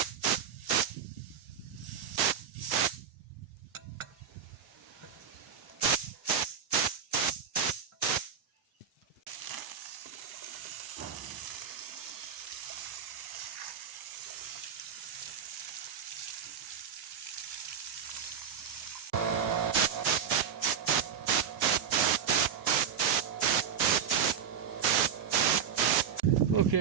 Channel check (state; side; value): quieter; left; 7.6 dB